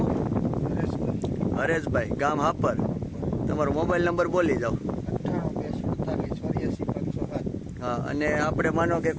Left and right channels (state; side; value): identical; both; correlation 1.00